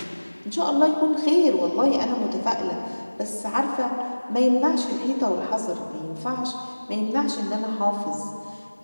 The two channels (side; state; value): both; inverted; correlation -1.00